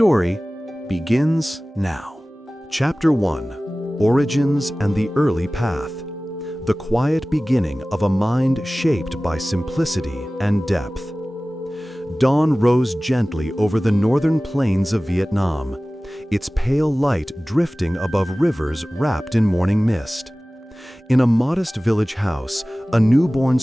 begins now. Chapter 1, Origins and the Early Path. The quiet beginning of a mind shaped by simplicity and depth. Dawn rose gently over the northern plains of Vietnam, its pale light drifting above rivers wrapped in morning mist. In a modest village house, a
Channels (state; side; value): normal; both; correlation 0.97